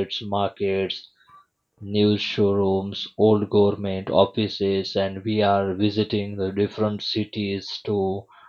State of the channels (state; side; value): identical; both; correlation 1.00